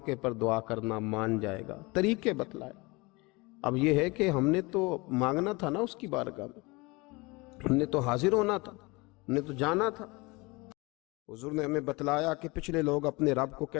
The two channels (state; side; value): quieter; right; 25.0 dB